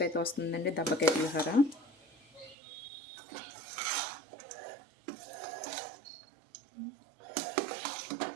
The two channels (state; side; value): drops out; left; at 2.6 s